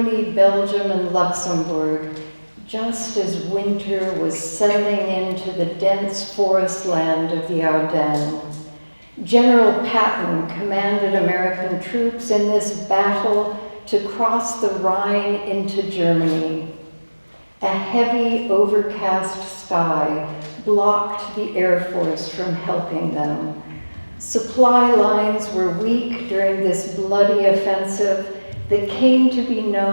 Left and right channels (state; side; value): inverted; both; correlation -1.00